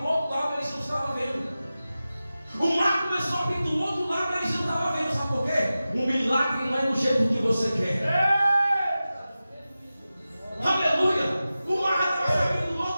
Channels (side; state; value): both; inverted; correlation -0.94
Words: outro lado, eles não estavam vendo. O mar começou a abrir do outro lado, eles não estavam vendo. Sabe por quê? O milagre não é do jeito que você quer. Aleluia! O mar estava se abrindo do